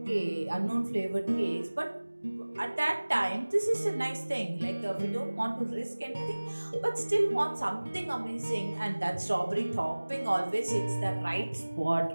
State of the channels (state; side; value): inverted; both; correlation -1.00